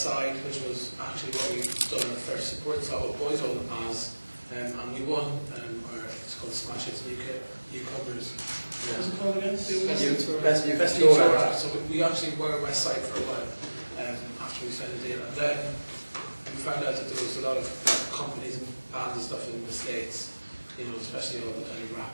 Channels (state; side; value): inverted; both; correlation -1.00